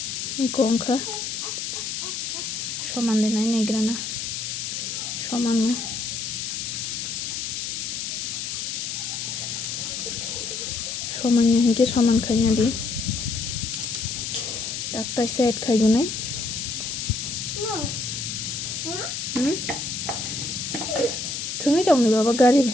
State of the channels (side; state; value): left; noise; hiss, 4 dB below the sound